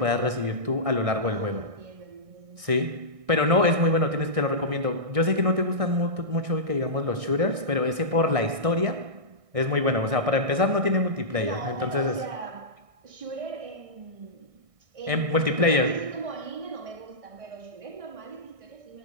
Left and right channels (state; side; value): late; left; 1.6 ms